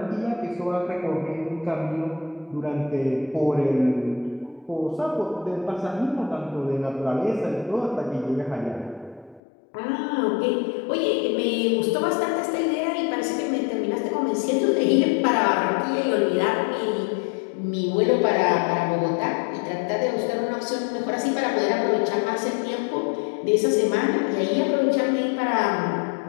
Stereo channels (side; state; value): right; drops out; at 9.4 s